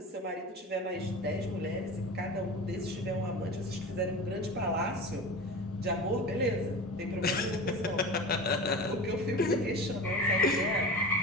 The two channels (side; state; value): both; normal; correlation 0.31